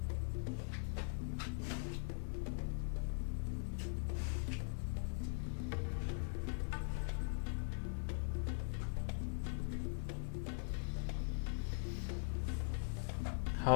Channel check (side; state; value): right; silent; digital silence